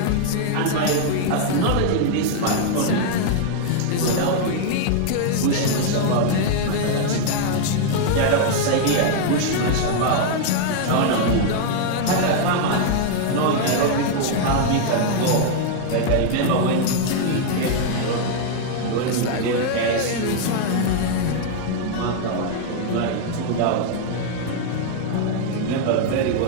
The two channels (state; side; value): different; both; correlation 0.00